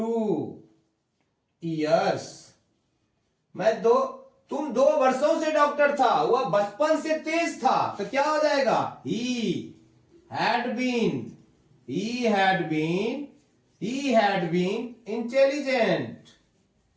years। तुम 2 वर्षों से डॉक्टर था, वह बचपन से तेज था, तो क्या हो जाएगा, he had been intelligent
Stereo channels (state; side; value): identical; both; correlation 1.00